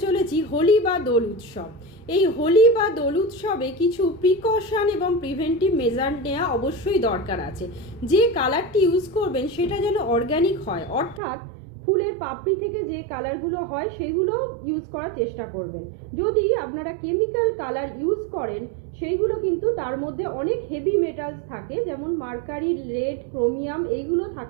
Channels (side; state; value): left; drops out; at 11.2 s